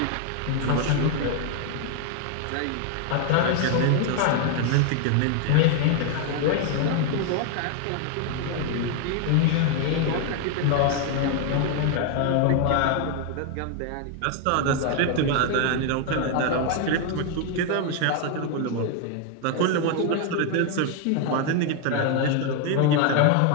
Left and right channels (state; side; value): different; both; correlation 0.01